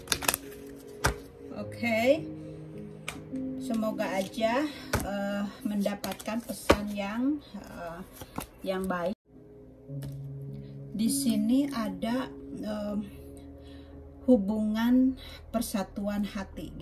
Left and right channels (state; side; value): identical; both; correlation 1.00